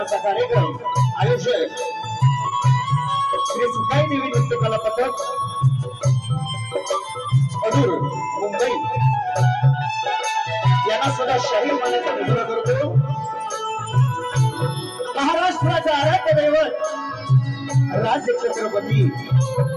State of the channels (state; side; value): identical; both; correlation 1.00